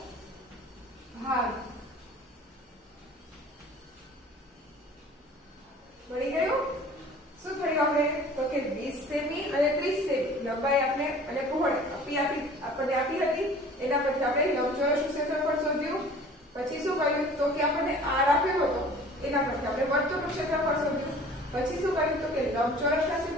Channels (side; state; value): both; normal; correlation 0.47